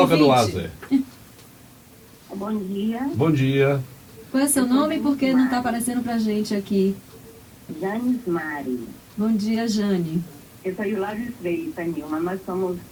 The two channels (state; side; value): identical; both; correlation 1.00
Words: ouvinte. no ar, Zé. Bom dia. Bom dia. Qual é seu nome e por que não está aparecendo para a gente aqui? Janes Mari. Bom dia, Jane. Eu sou Hilário Freitas, Nilma. Nós somos